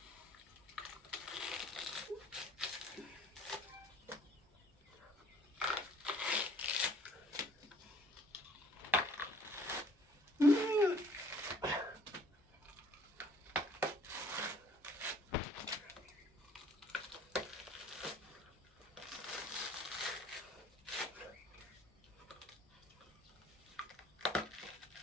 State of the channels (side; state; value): both; normal; correlation 0.56